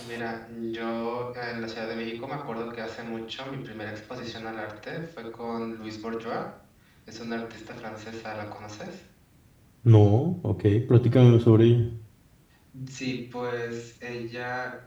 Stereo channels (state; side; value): identical; both; correlation 1.00